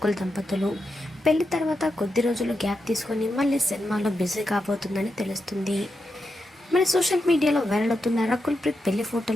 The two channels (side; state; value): both; normal; correlation 0.86